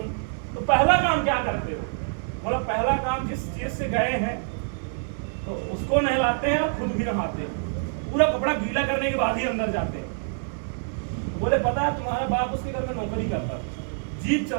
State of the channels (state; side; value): silent; left; digital silence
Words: तो पहला काम क्या करते हो? बोला पहला काम जिस चीज से गए हैं तो उसको नहलाते हैं और खुद भी नहाते हैं, पूरा कपड़ा गीला करने के बाद ही अंदर जाते हैं। बोले पता है तुम्हारा बाप उसके घर में नौकरी करता था, जीप